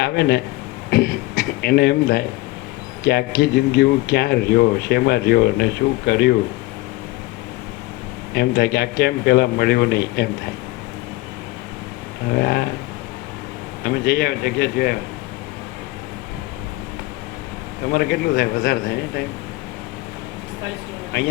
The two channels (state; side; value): quieter; right; 19.9 dB